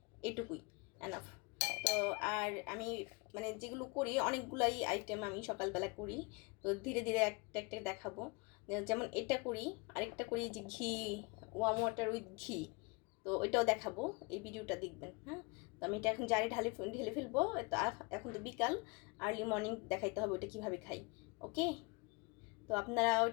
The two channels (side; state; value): right; quieter; 28.5 dB